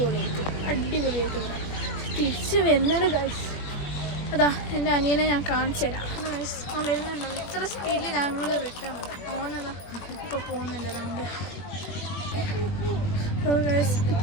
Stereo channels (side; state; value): right; late; 21 ms